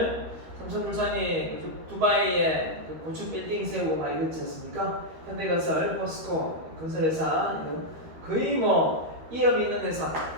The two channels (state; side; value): late; left; 13 ms